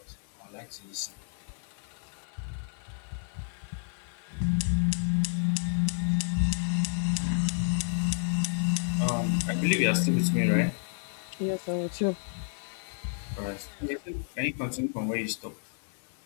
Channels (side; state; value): right; silent; 57 dB below the other